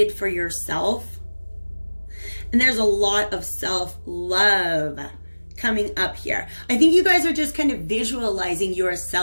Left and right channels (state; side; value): inverted; both; correlation -1.00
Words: for yourself. And there's a lot of self-love coming up here. I think you guys are just kind of visualizing